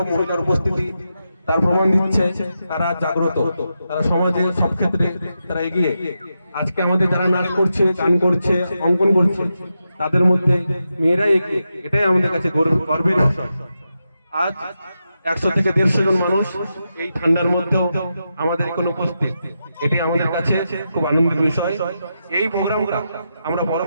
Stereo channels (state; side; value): inverted; both; correlation -0.87